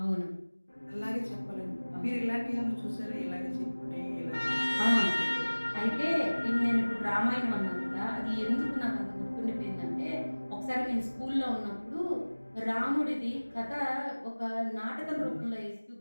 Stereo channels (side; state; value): both; inverted; correlation -1.00